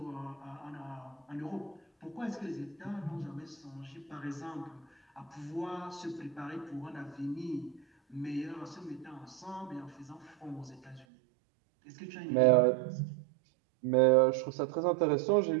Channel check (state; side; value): drops out; left; at 11.1 s